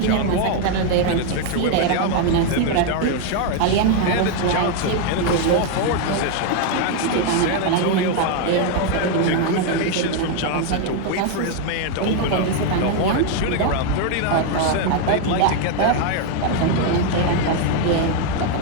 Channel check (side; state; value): both; different; correlation 0.01